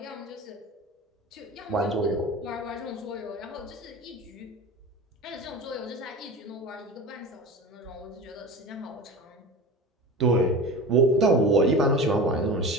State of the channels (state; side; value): normal; both; correlation 0.32